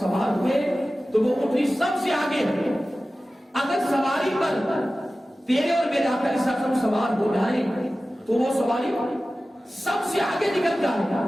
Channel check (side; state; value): both; normal; correlation 0.96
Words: ہوئے تو وہ اونٹنی سب سے آگے ہے۔ اگر سواری پر تیرے اور میرے آقا علیہ السلام سوار ہو جائیں تو وہ سواری سب سے آگے نکل جائے گا،